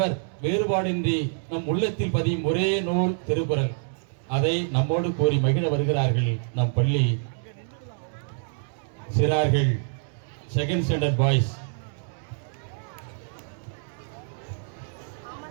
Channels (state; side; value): silent; left; digital silence